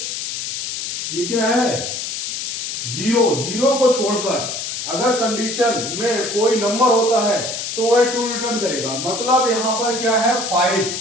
ये क्या है, 0 को छोड़कर अगर कंडीशन में कोई नंबर होता है तो वह ट्रू रिटर्न करेगा। मतलब यहां पर क्या है, 5,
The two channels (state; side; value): noise; left; hiss, 4 dB below the sound